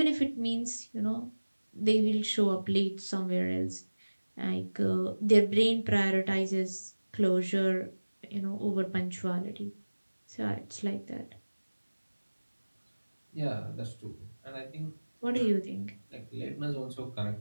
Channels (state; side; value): inverted; both; correlation -1.00